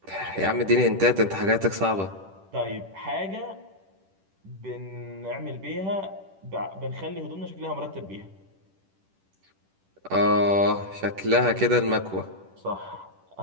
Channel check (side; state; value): left; late; 10 ms